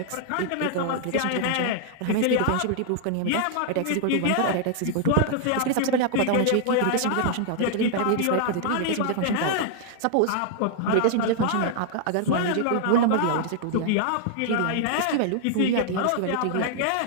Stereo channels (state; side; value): different; both; correlation 0.00